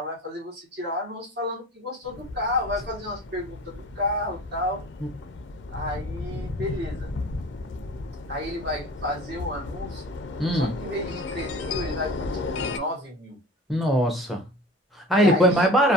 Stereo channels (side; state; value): both; normal; correlation 0.40